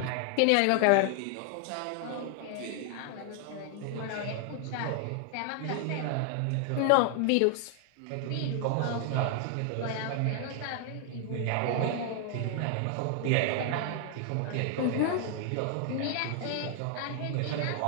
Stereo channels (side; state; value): both; different; correlation 0.00